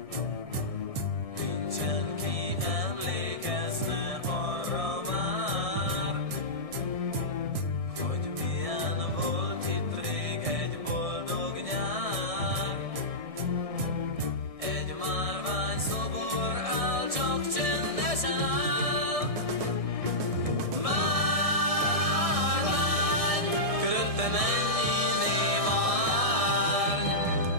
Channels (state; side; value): late; left; 1.6 ms